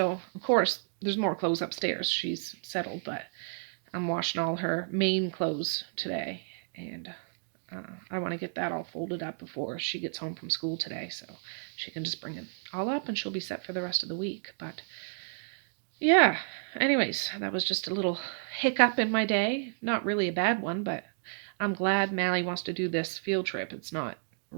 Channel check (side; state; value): left; silent; digital silence